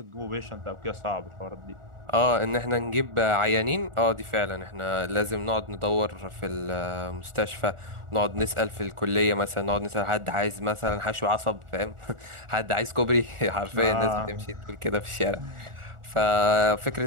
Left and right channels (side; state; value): left; late; 1.4 ms